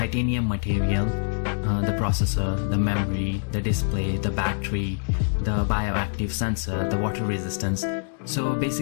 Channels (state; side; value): silent; right; digital silence